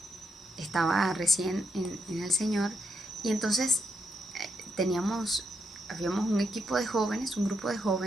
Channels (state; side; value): normal; both; correlation 0.79